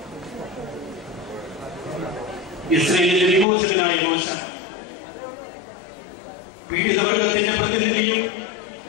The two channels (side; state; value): right; drops out; at 3.5 s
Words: ഇസ്രായേലിന്റെ വിമോചകനായ മോശ പീഡിതവർഗത്തിന്റെ പ്രതിനിധിയും